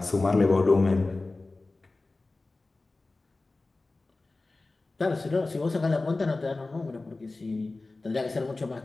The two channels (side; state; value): right; quieter; 3.3 dB